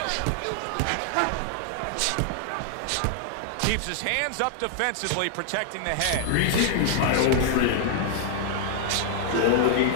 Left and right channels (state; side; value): different; both; correlation 0.00